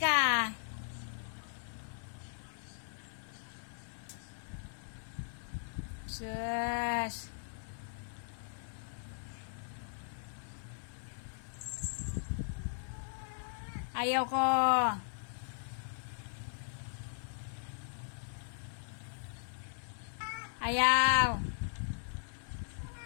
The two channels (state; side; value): silent; right; digital silence